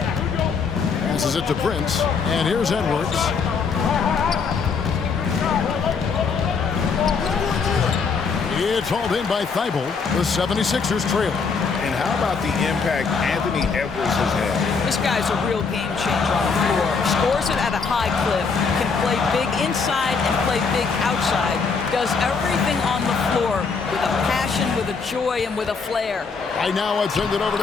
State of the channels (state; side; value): quieter; right; 5.2 dB